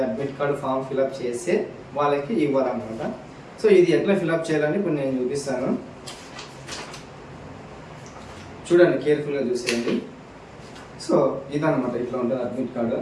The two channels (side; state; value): both; identical; correlation 1.00